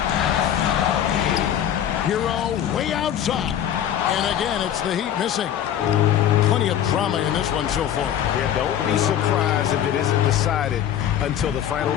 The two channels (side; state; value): right; quieter; 10.3 dB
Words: Hero way outside. And again, it's the Heat missing. Plenty of drama in this one so far. Yeah, don't be surprised if it isn't decided until the final